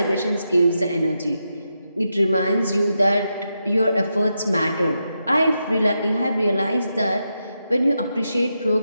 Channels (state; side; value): inverted; both; correlation -0.86